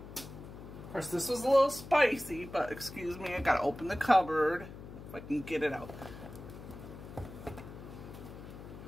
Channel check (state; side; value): noise; left; hum, 13 dB below the sound